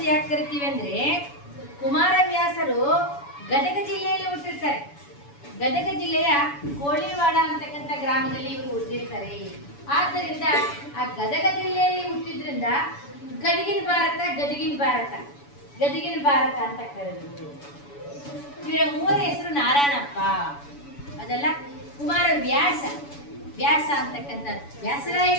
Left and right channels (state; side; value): late; right; 7.0 ms